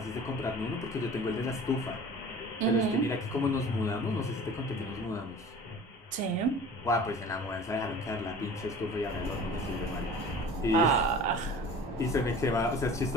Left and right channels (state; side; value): normal; both; correlation 0.42